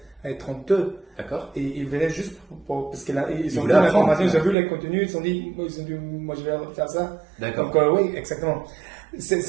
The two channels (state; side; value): drops out; left; at 4.5 s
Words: et 32. D'accord. Et ils venaient juste parce qu'ils ont vu voulaient l'information, apprendre. ils ont vu les contenus, ils se sont dit, moi je vais faire ça. D'accord. Donc oui, exactement.